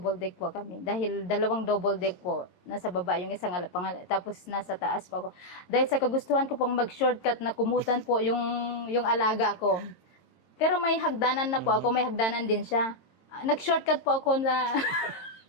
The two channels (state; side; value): late; right; 22 ms